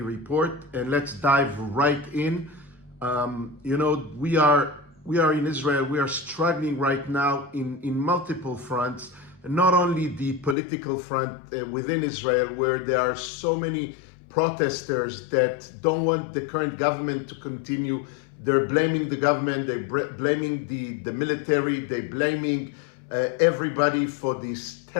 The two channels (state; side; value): drops out; right; at 10.6 s